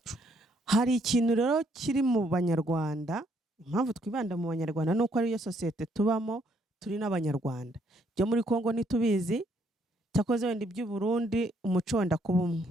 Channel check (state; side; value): normal; both; correlation 0.69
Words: Hari ikintu rero kiri mu Banyarwanda, impamvu twibanda mu Banyarwanda nuko ari yo sosiyete tubamo, turi n'Abanyarwanda. Byo muri Kongo ntitubizi, cyakoze wenda iby'u Burundi umuco wenda kuba umwe.